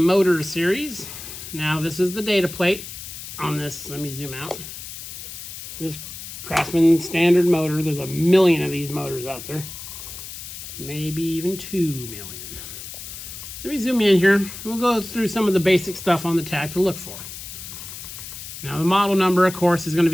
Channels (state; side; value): noise; left; hiss, 11 dB below the sound